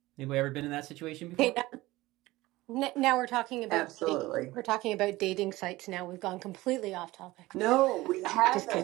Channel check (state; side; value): quieter; left; 19.0 dB